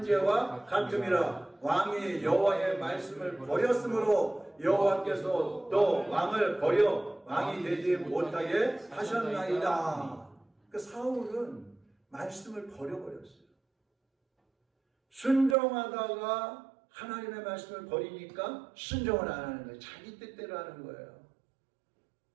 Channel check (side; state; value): left; drops out; at 15.6 s